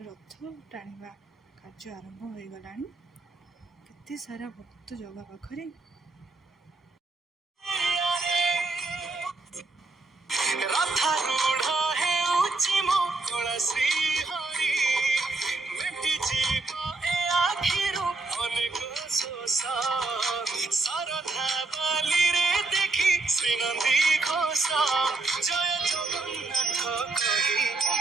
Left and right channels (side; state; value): left; quieter; 3.4 dB